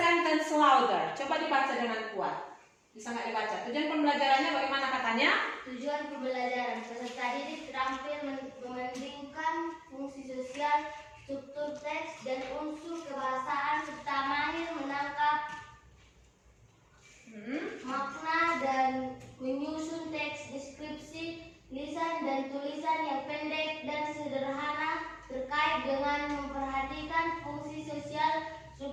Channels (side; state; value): both; identical; correlation 1.00